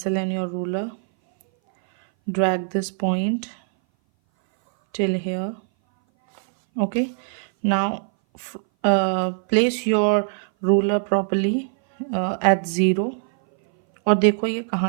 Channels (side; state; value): left; silent; 59 dB below the other